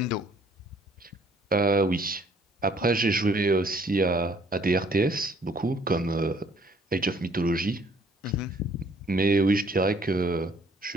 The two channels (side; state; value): both; normal; correlation 0.61